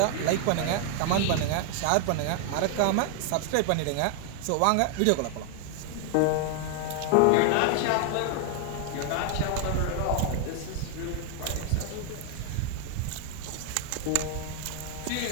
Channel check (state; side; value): different; both; correlation 0.00